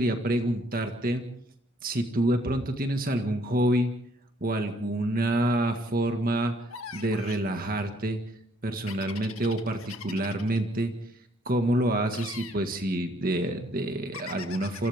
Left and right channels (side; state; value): both; normal; correlation 0.65